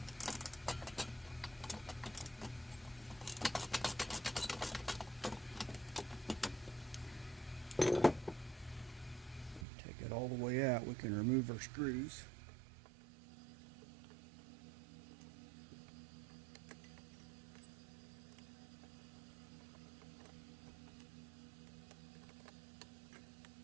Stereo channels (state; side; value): drops out; left; at 9.7 s